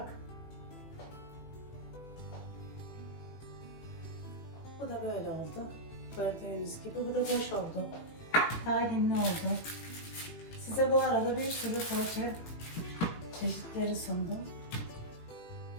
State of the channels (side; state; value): right; late; 18 ms